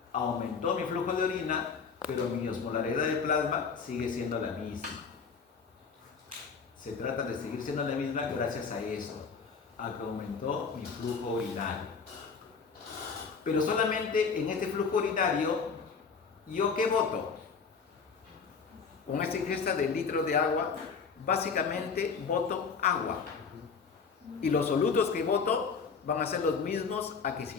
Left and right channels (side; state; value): right; quieter; 5.5 dB